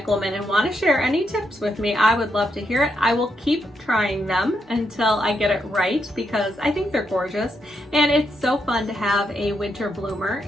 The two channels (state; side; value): normal; both; correlation 0.80